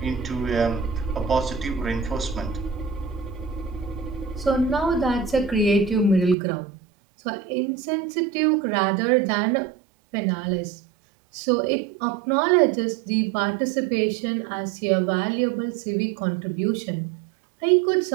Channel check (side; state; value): left; drops out; at 6.4 s